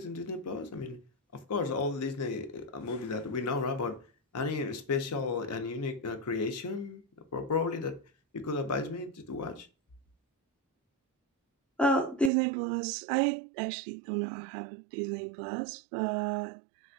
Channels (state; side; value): drops out; left; at 12.3 s